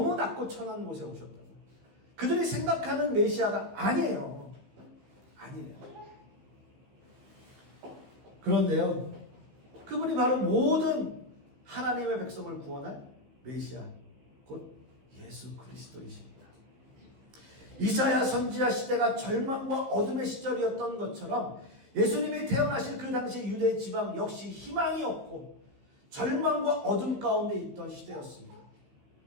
낮고 천한 곳에 오셨다고. 그들이 생각하는 메시아가 아니에요. 아니에요. 그런데요, 그분이 바로 모든 하나님의 백성을 구원할 메시아, 곧 예수 그리스도이십니다. 이사야 선지자 시대가 절망과 어둠의 시절이었던 것처럼 예수님이 태어나실 그 당시 유대 지방 역시 희망이 없고 절망과 어둠 가운데 있던 시대였습니다.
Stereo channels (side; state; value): left; late; 15 ms